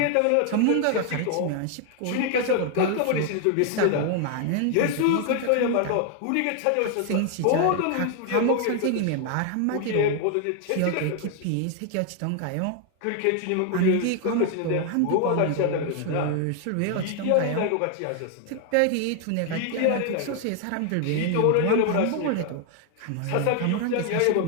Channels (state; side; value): different; both; correlation 0.00